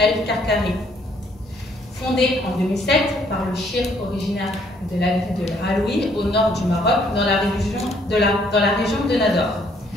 Fondée en 2007 par le shir originaire de la ville de l'Aloui au nord du Maroc, dans la région de Nador.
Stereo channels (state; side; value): normal; both; correlation 0.66